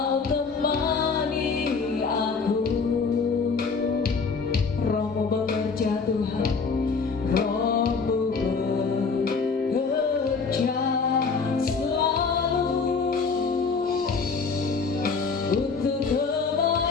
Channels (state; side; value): quieter; right; 4.9 dB